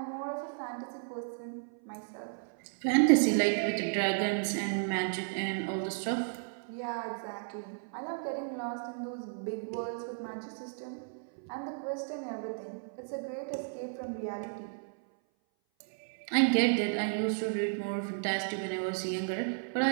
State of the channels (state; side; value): silent; left; 55 dB below the other